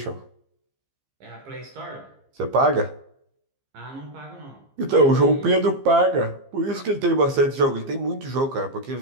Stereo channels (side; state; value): left; late; 15 ms